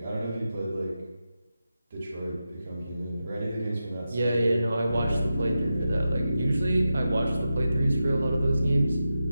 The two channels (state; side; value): inverted; both; correlation -0.90